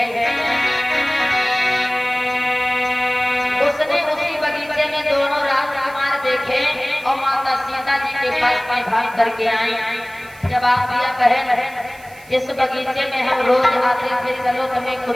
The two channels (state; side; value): noise; right; hiss, 24 dB below the sound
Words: उसने उसी बगीचे में दोनों राजकुमार देखे और माता सीता जी के पास में भाग करके आई। जब आप दिया बहन इस बगीचे में हम रोज आते थे, चलो तुम्हें